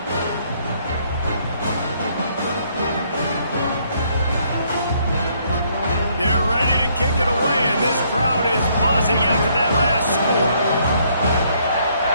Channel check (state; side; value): inverted; both; correlation -0.68